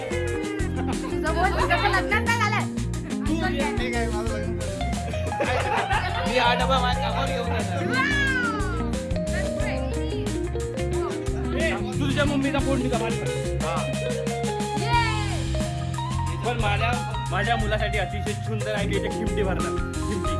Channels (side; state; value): both; identical; correlation 1.00